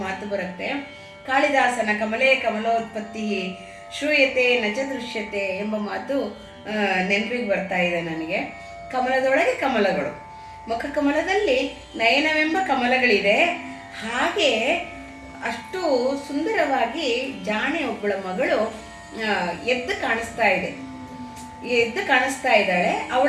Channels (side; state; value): both; identical; correlation 1.00